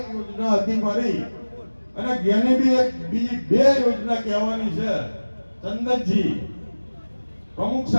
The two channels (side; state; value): both; inverted; correlation -1.00